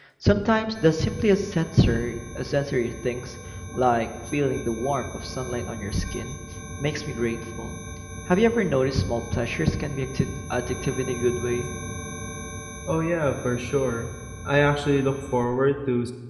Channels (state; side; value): identical; both; correlation 1.00